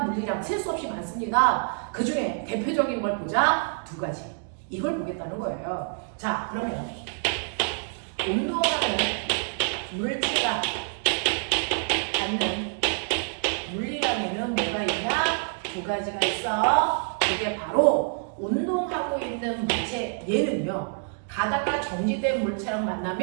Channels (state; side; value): silent; left; 60 dB below the other